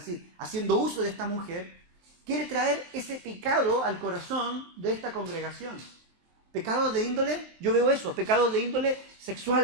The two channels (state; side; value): late; left; 23 ms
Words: haciendo uso de esta mujer, quiere traer ese pecado al corazón de esta congregación. Pecados de índole, yo veo eso, pecados de índole